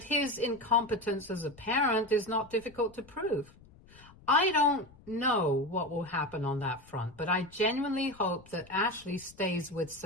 his incompetence as a parent is not difficult to prove. I don't know what will happen on that front, but I genuinely hope that Ashley stays with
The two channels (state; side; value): noise; left; rumble, 24 dB below the sound